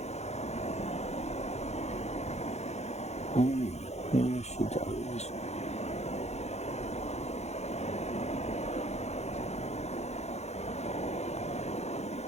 Here she goes.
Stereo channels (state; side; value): late; right; 0.32 ms